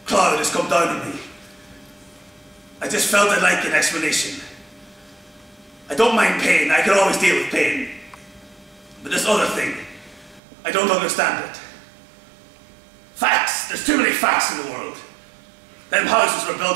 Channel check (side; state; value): left; drops out; at 10.4 s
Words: cloud has come down on me. I just felt I'd like an explanation. I don't mind pain, I can always deal with pain. But this other thing, I don't understand it. Facts, there's too many facts in the world. Them houses were